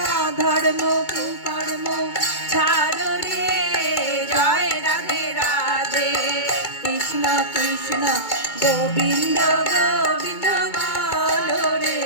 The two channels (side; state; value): right; late; 2.2 ms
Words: ধর্ম কুকর্ম ছাড়ো রে জয় রাধে রাধে কৃষ্ণ কৃষ্ণ গোবিন্দ গোবিন্দ বলো রে